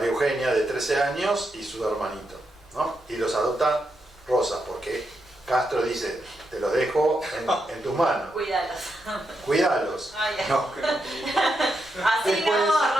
Eugenia de 13 años y su hermanito, ¿no? Y los adopta Rosas, porque Castro dice, te los dejo en tus manos, Cuídalos. cuídalos. Ay, ay. No. Así no,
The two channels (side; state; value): both; normal; correlation 0.84